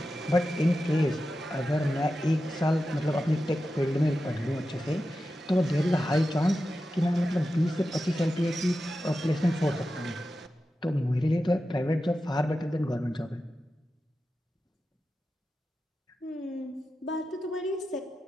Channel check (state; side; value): normal; both; correlation 0.91